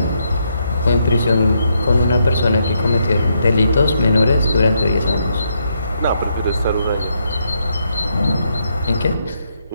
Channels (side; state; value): both; inverted; correlation -0.78